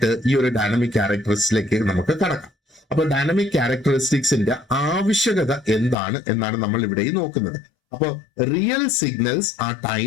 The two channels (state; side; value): drops out; right; at 6.0 s